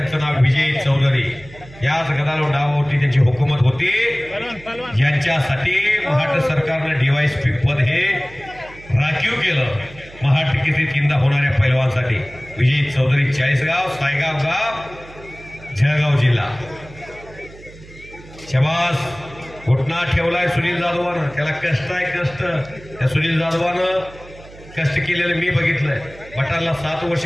नाव विजय चौधरी। याच गदालोट डावावरती त्यांची हुकूमत होती ज्यांच्यासाठी महाराष्ट्र सरकारनं DYSP पद हे राखीव केलं। महाराष्ट्र केसरी तीनदा होणाऱ्या पैलवानसाठी विजय चौधरी चाळीसगाव सायगाव गाव जळगाव जिल्हा. शबास घुटना ठेवलाय सुनील जाधवानं. त्याला कष्ट आहे कष्ट. त्या सुनील जाधवानं कष्ट केलेलं मी बघितलंय. बटाला 7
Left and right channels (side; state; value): right; noise; hum, 20 dB below the sound